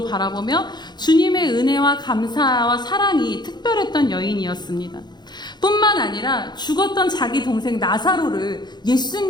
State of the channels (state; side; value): late; right; 0.21 ms